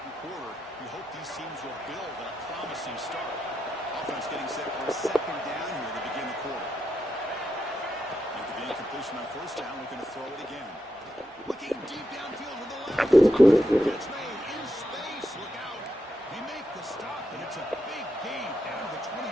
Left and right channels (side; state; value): both; normal; correlation 0.84